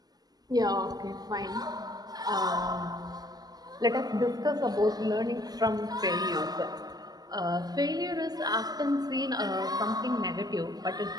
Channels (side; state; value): left; late; 0.19 ms